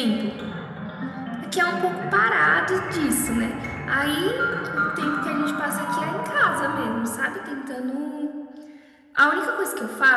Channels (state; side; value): identical; both; correlation 1.00